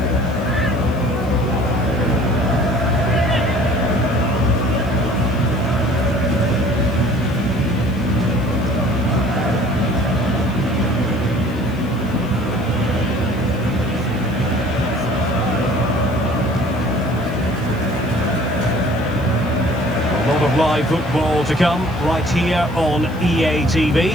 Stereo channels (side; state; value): left; noise; hiss, 26 dB below the sound